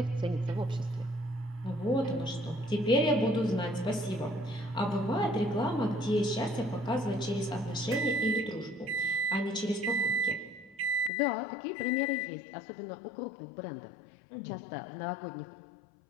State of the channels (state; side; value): drops out; right; at 11.1 s